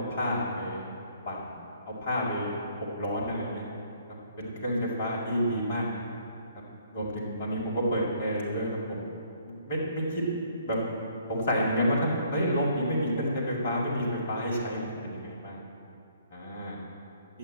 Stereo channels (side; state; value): both; inverted; correlation -0.63